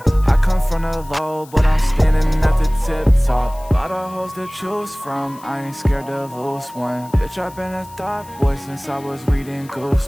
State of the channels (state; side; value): noise; left; hiss, 23 dB below the sound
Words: I come from the low, but I'm standing at the tip top. Lot of hoes to choose from, I ain't scared to lose one. Bitch, I've been a thought boy since I was reading